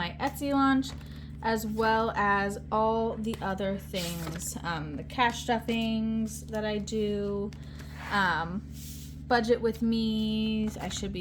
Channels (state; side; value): identical; both; correlation 1.00